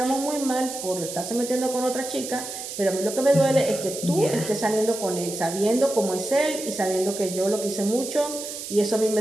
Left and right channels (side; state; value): right; noise; hiss, 8 dB below the sound